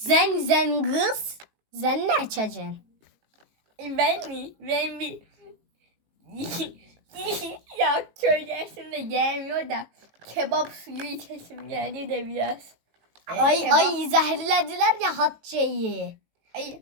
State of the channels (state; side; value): late; left; 18 ms